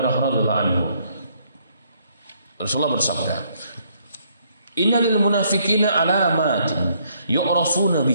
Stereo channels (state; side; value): inverted; both; correlation -0.69